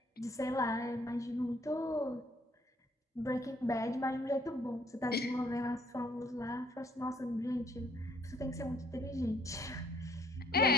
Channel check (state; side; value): normal; both; correlation 0.64